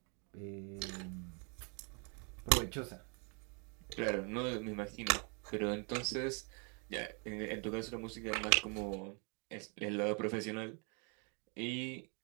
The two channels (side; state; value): left; quieter; 36.6 dB